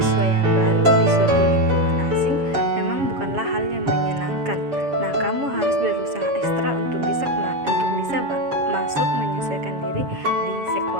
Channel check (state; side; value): late; left; 7.2 ms